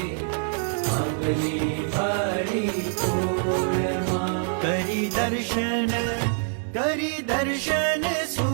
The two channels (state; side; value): silent; left; digital silence